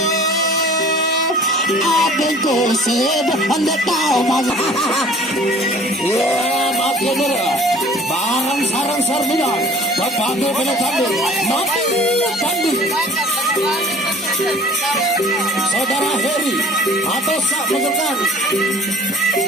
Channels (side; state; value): both; normal; correlation 0.49